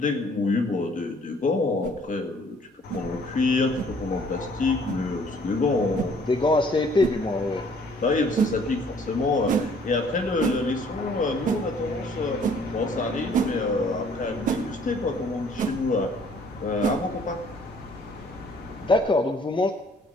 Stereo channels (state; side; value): normal; both; correlation 0.58